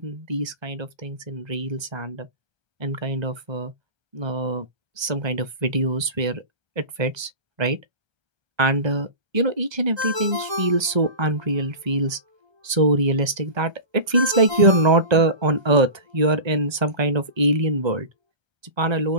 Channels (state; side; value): late; left; 1.3 ms